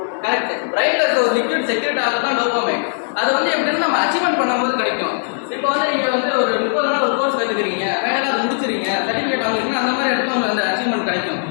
கரெக்ட். பிரைன்ல இருக்க ஒரு லிக்விட் செக்ரெட் ஆகிறது தான் டோபமைன். அது வந்து எப்படின்னா நம்ம அச்சீவ்மெண்ட் பண்ணும்போது கிடைக்கும். இப்போ வந்து நீங்கள் வந்து ஒரு 30 நாள் ஒரு கோர்ஸ் கற்றுக்கிறீங்க, ஃபைனலாக அதை முடிச்சுறீங்க, சர்டிஃபிகேட் வாங்குறீங்கன்னா அந்த மாதிரி இடத்துல உங்களுக்கு அந்த அச்சீவ்மெண்ட் கிடைக்கும்.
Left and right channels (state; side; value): silent; right; digital silence